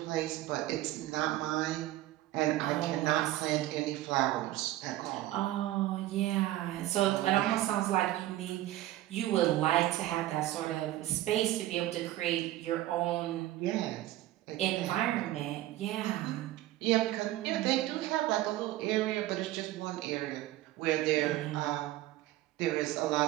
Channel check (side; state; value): left; quieter; 15.4 dB